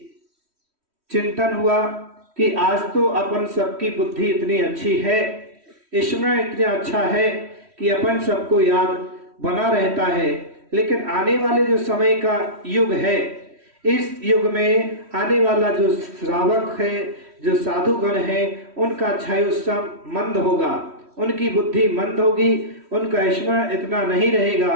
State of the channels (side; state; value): left; late; 3.1 ms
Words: चिंतन हुआ कि आज तो अपन सबकी बुद्धि इतनी अच्छी है, स्मरण इतना अच्छा है कि अपन सबको याद बना रहता है, लेकिन आने वाले जो समय का युग है, इस युग में आने वाला जो श्रावक है, जो साधुगण है, उनका क्षयोत्सव मंद होगा, उनकी बुद्धि मंद होगी, उनका स्मरण इतना नहीं रहेगा।